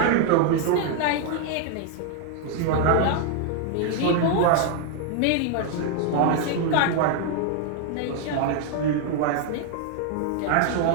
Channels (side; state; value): both; different; correlation 0.00